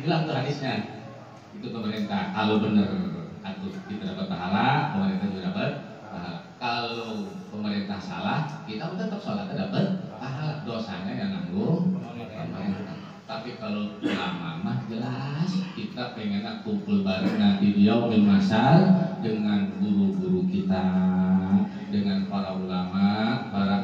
bilang tuh hadisnya itu pemerintah kalau benar atau kita dapat pahala, pemerintah juga dapat pahala. Kalau pemerintah salah, kita tetap sholat dapat pahala. Dosanya yang nanggung pemerintah. Tapi kalau ulama mah jelas kita pengen kumpul bareng nanti di yaumil masal dengan guru-guru kita, dengan para ulama,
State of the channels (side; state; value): both; identical; correlation 1.00